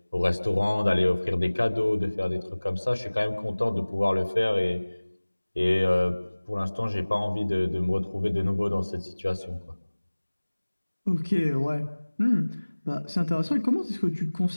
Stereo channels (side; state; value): both; inverted; correlation -1.00